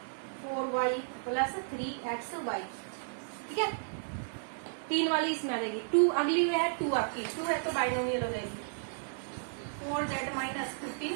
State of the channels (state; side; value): silent; left; digital silence